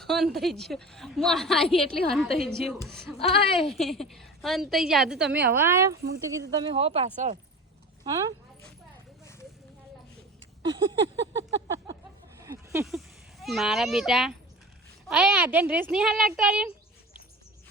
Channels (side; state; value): both; normal; correlation 0.35